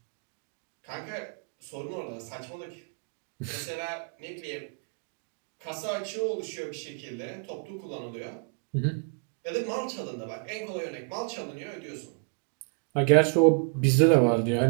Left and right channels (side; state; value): left; quieter; 40.0 dB